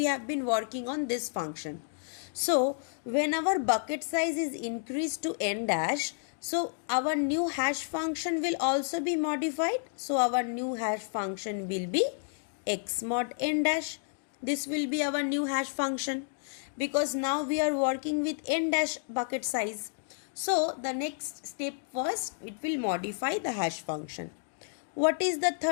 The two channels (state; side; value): silent; right; digital silence